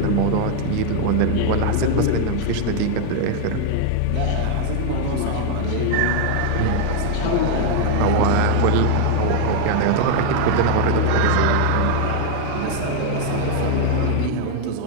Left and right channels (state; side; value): different; both; correlation 0.00